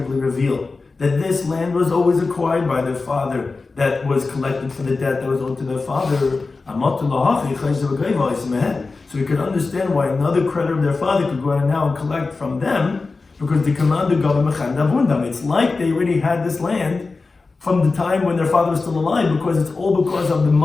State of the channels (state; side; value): quieter; right; 3.9 dB